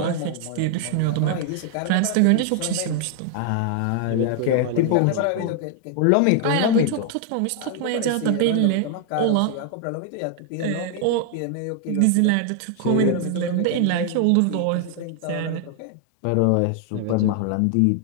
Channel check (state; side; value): different; both; correlation 0.00